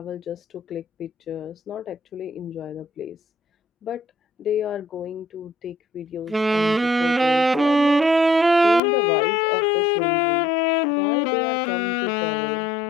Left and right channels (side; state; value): right; drops out; at 8.8 s